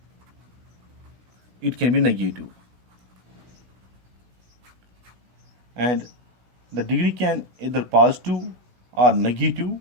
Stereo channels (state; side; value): late; left; 16 ms